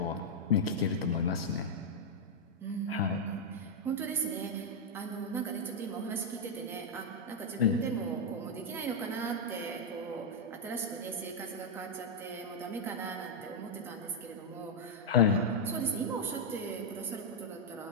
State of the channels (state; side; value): normal; both; correlation -0.03